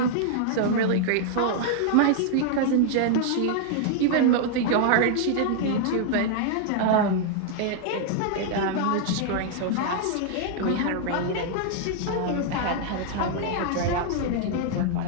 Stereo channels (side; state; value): both; different; correlation -0.01